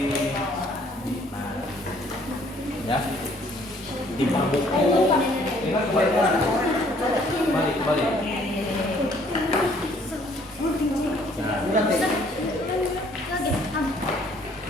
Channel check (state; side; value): normal; both; correlation 0.61